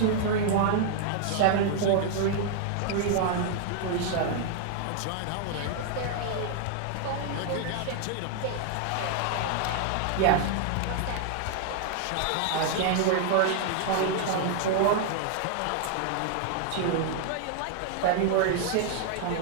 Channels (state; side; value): different; both; correlation 0.00